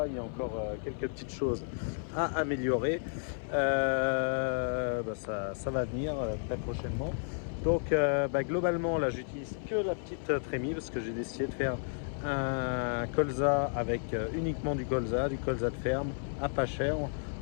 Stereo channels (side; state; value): right; silent; 55 dB below the other